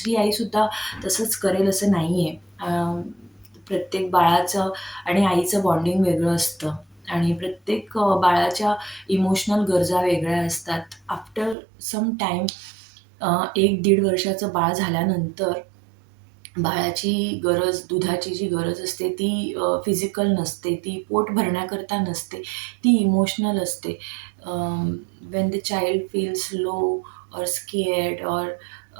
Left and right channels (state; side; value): drops out; left; at 11.6 s